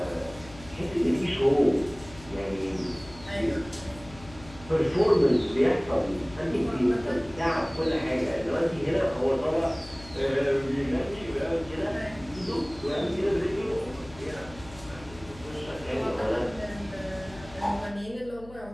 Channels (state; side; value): noise; left; hum, 19 dB below the sound